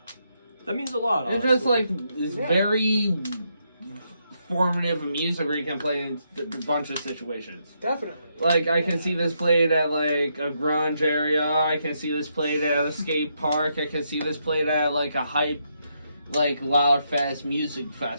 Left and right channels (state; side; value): inverted; both; correlation -0.79